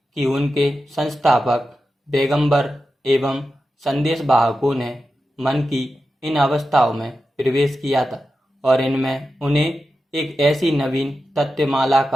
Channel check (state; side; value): normal; both; correlation 0.91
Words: कि उनके संस्थापक पैगंबर एवं संदेश वाहकों ने मन की इन अवस्थाओं में प्रवेश किया था और इनमें उन्हें एक ऐसी नवीन तत्वमाला